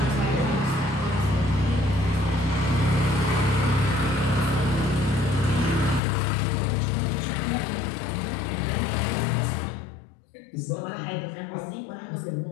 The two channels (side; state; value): right; drops out; at 6.0 s